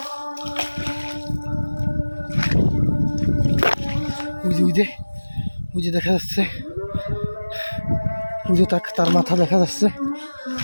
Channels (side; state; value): both; inverted; correlation -1.00